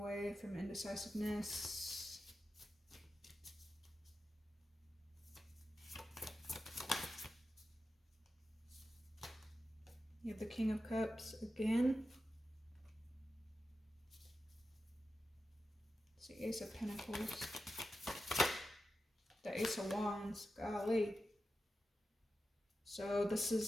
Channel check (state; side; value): normal; both; correlation 0.91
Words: from indecisiveness. You have the King of Cups again. It's the Ace of Pentacles. The Ace of Wands, golly. So this